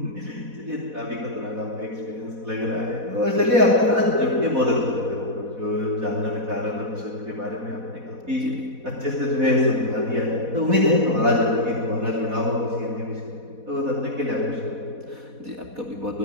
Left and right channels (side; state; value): left; late; 4.1 ms